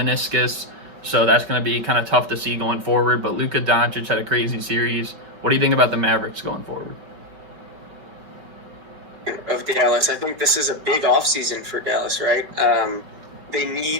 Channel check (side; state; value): left; late; 5.3 ms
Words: so that's going to be kind of tough to see going forward. But Luka Doncic had a crazy series. What do you think about the Mavericks going forward? Of Dallas, I think this is a big offseason for Dallas, right? They